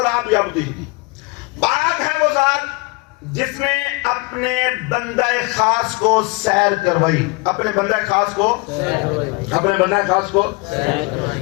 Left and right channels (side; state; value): right; quieter; 25.9 dB